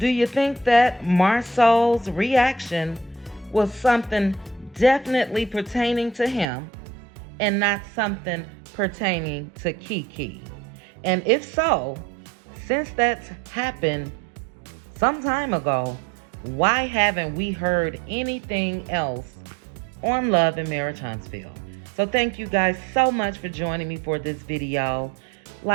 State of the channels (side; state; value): left; drops out; at 6.5 s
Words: you think that Marsau's reaction was something definitely pertaining to him and not something pertaining to KeKe? And if so, since that's happened some time ago, why haven't we heard anything else on Love and Marriage Huntsville? So thank you guys so much for joining me for this video.